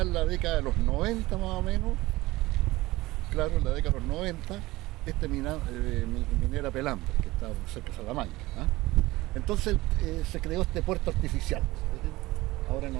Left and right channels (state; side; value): quieter; left; 19.2 dB